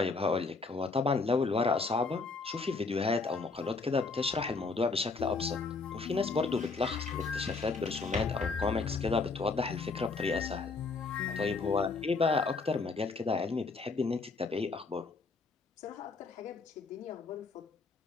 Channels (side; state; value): right; quieter; 4.1 dB